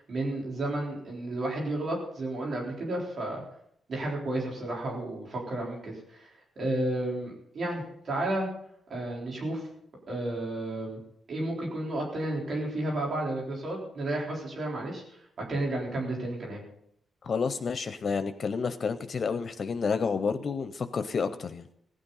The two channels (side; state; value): both; normal; correlation 0.80